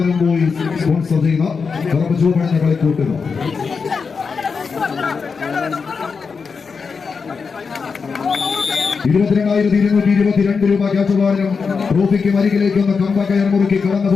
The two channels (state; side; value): quieter; right; 5.3 dB